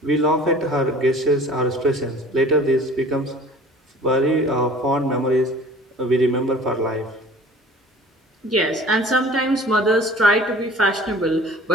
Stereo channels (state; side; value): normal; both; correlation 0.47